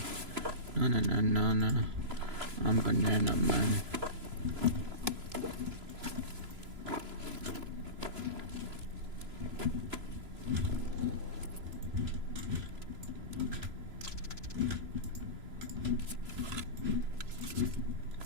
Na. I'm banana man.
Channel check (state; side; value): late; left; 3.0 ms